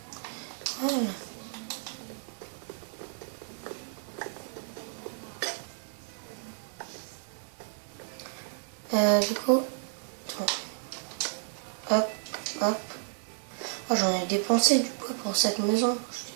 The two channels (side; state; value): left; silent; digital silence